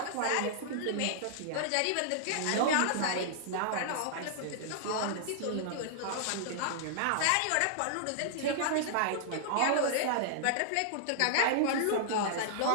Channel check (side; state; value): both; different; correlation -0.01